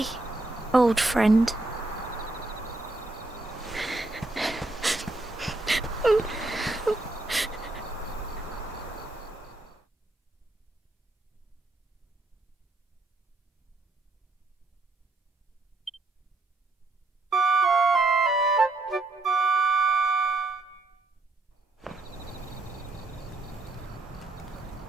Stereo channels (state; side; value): quieter; left; 3.0 dB